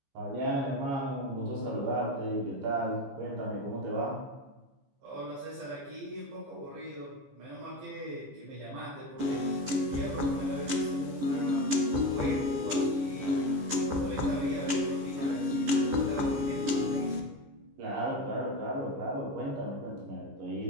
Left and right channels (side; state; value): left; late; 15 ms